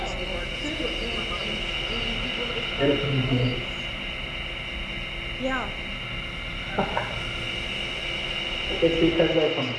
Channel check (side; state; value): both; identical; correlation 1.00